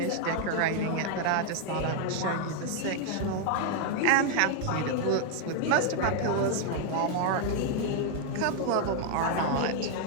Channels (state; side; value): different; both; correlation 0.00